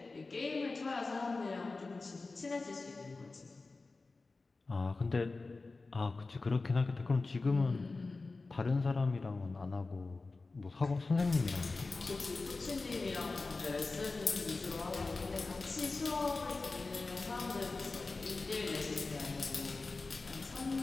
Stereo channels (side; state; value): right; quieter; 3.7 dB